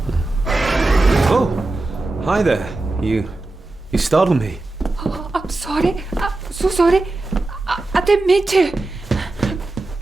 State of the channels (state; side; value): quieter; left; 3.0 dB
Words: Oh, hi there. You startled me. Oh, I'm sorry. I'm so sorry. I didn't mean to.